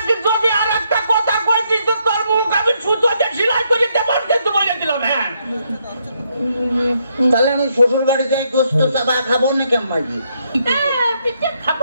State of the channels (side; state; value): both; inverted; correlation -0.75